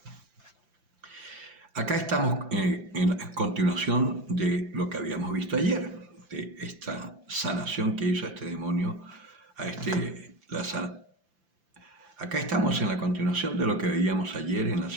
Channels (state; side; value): late; left; 5.8 ms